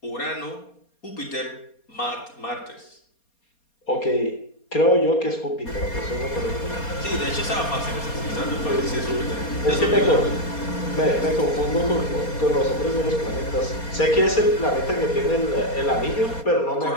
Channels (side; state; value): right; late; 4.2 ms